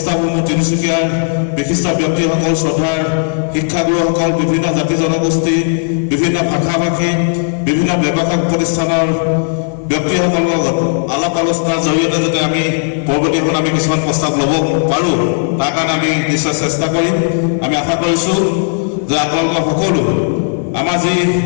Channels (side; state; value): right; silent; digital silence